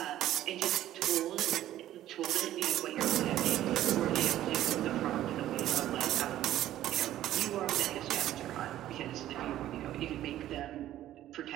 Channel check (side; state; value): left; quieter; 13.2 dB